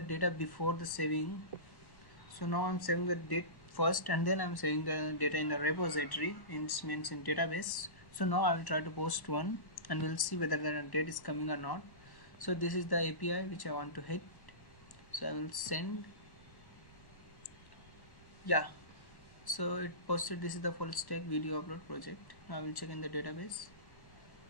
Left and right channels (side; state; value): right; late; 1.1 ms